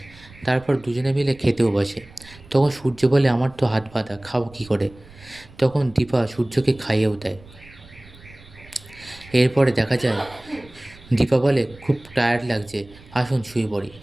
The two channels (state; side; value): noise; right; rumble, 22 dB below the sound